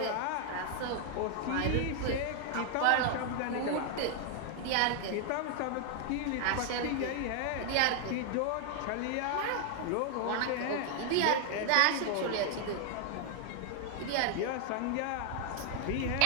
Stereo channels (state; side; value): different; both; correlation 0.00